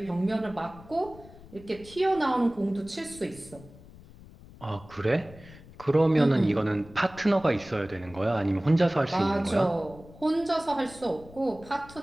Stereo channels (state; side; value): noise; left; rumble, 20 dB below the sound